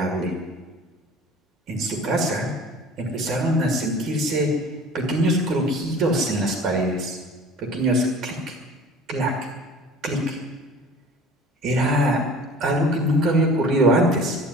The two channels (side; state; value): both; normal; correlation 0.44